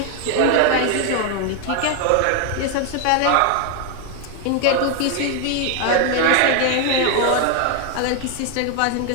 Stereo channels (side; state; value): both; different; correlation 0.01